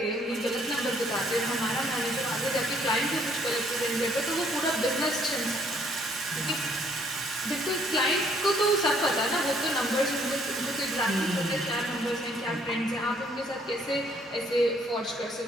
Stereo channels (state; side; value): normal; both; correlation 0.65